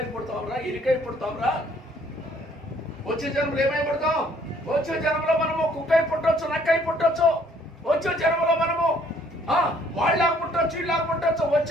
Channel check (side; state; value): both; normal; correlation 0.62